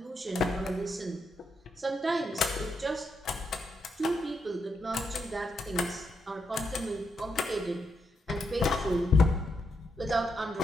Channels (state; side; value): normal; both; correlation 0.81